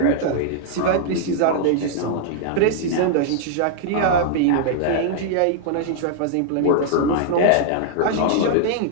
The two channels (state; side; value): different; both; correlation -0.01